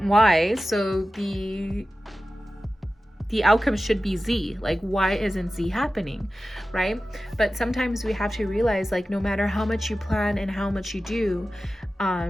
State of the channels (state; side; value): normal; both; correlation 0.95